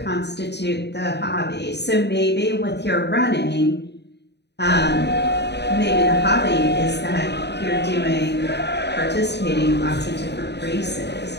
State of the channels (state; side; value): late; right; 0.50 ms